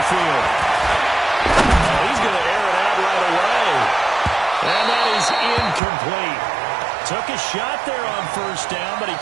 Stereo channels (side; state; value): left; drops out; at 5.8 s